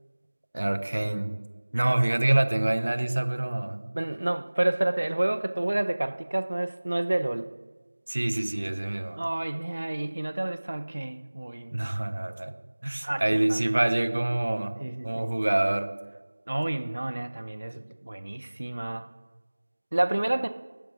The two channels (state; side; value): inverted; both; correlation -1.00